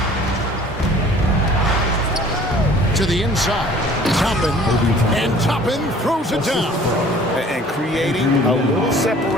To the inside. Toppin. And Toppin throws it down. And creating a little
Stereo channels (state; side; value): normal; both; correlation 0.51